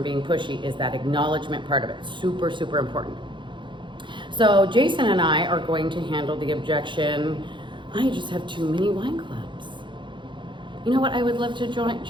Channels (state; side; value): late; left; 0.23 ms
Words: being pushy, is that acknowledgement part of it. Super, super important. So Jason and I are going to handle the objection, I just have too many wine clubs. You know what, I would love to join.